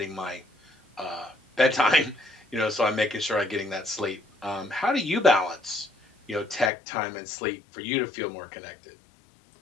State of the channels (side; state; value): right; drops out; at 6.7 s